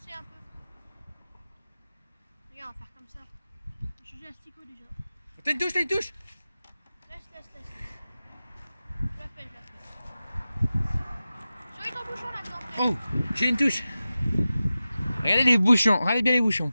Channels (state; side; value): inverted; both; correlation -0.95